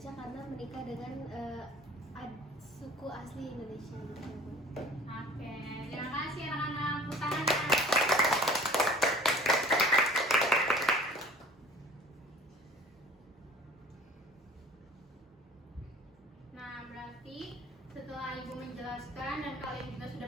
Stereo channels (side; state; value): both; normal; correlation 0.47